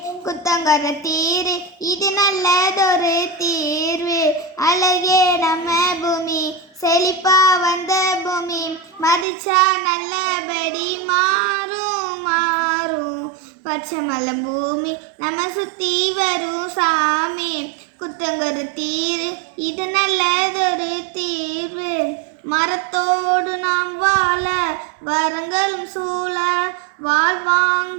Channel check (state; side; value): drops out; left; at 9.2 s